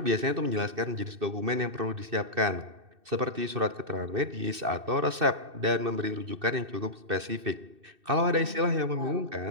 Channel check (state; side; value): late; left; 2.6 ms